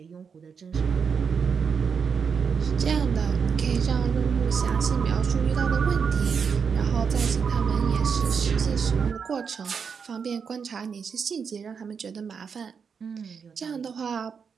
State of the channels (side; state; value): left; quieter; 6.2 dB